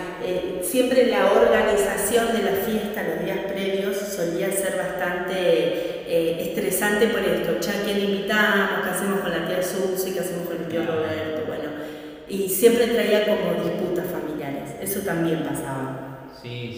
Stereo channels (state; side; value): identical; both; correlation 1.00